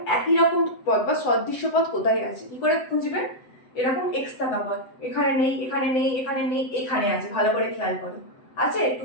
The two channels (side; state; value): right; late; 7.8 ms